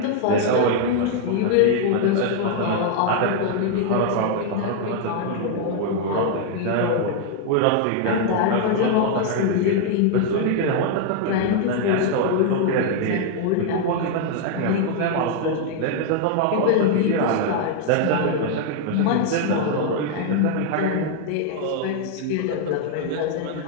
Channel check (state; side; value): different; both; correlation 0.00